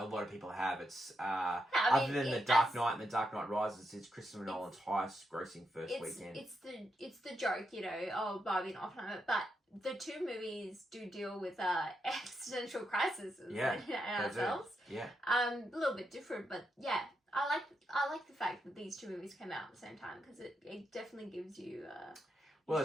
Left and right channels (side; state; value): both; normal; correlation 0.83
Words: lot of people have. It's other than The Dark Knight and The Dark Knight Rises, it's Christopher Nolan's highest grossing first weekend. It's the joke, Barbie and Oppenheimer, but the two movies do deal with existential crises and ourselves. Yeah. A little bit different, but yeah, I like the fact that these two movies came out at the same time, because it definitely gives you. Well,